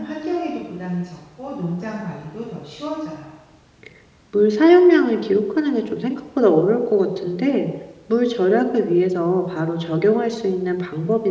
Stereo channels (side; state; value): both; identical; correlation 1.00